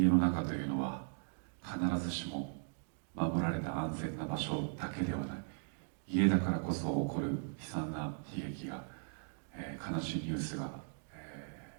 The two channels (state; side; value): silent; left; digital silence